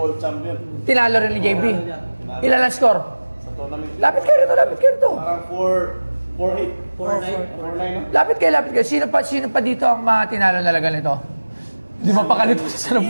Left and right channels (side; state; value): both; inverted; correlation -1.00